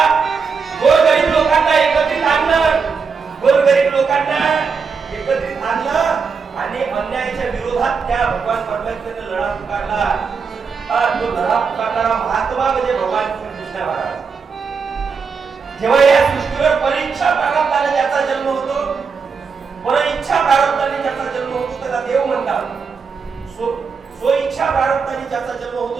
गोरगरीब लोकांना एकत्रित आणलं, गोरगरीब लोकांना एकत्रित आणलं आणि अन्यायाच्या विरोधात त्या भगवान परमात्म्याने लढा पुकारला. तो लढा पुकारणारा महात्मा म्हणजे भगवान श्रीकृष्ण महाराज. जेव्हा या सृष्टीवर परीक्षा प्रारब्धाने ज्याचा जन्म होतो, परीक्षा प्रारब्धाने ज्याचा जन्म होतो त्याला देव म्हणतात, स्वइच्छा प्रारब्धाने ज्याचा जन्म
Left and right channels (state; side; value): quieter; left; 5.5 dB